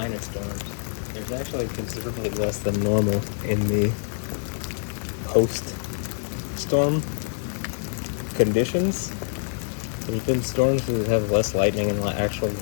of storms. There's actually considerably less than normal in the post-storm conditions. There's been storms that have less lightning in the actual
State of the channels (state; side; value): silent; right; 61 dB below the other